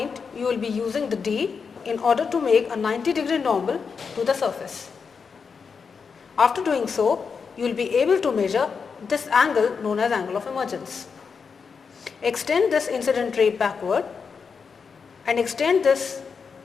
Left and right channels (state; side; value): quieter; right; 5.7 dB